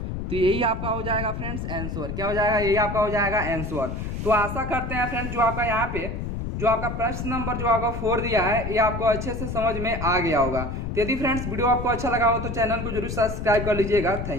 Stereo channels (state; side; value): noise; left; rumble, 5 dB below the sound